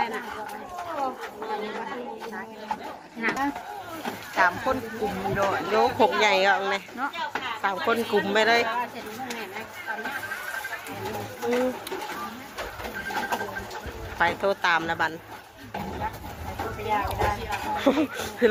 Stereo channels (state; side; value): identical; both; correlation 1.00